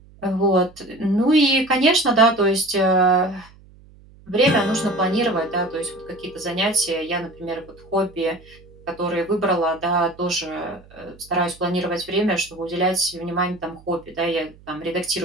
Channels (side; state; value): right; noise; hum, 25 dB below the sound